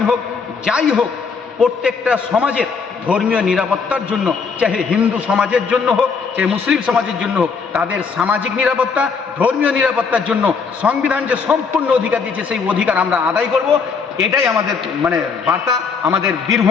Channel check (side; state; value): right; quieter; 5.4 dB